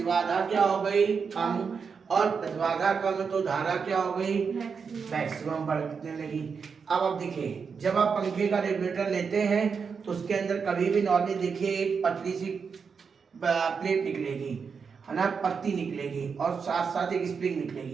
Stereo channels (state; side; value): quieter; left; 5.8 dB